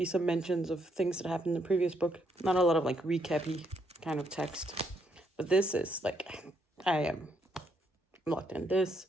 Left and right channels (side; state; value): both; normal; correlation 0.74